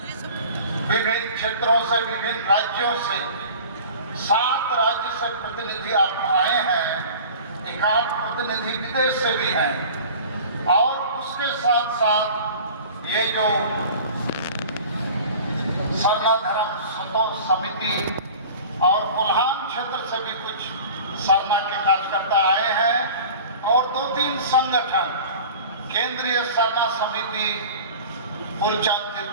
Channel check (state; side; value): inverted; both; correlation -0.40